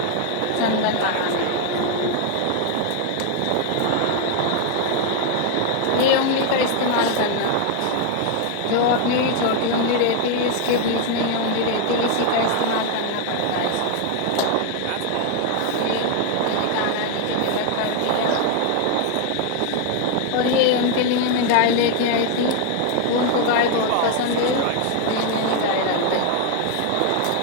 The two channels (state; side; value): different; both; correlation 0.01